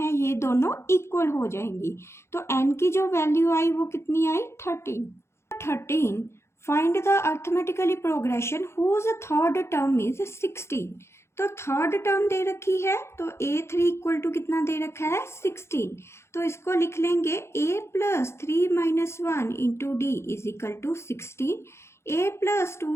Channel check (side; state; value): right; late; 0.13 ms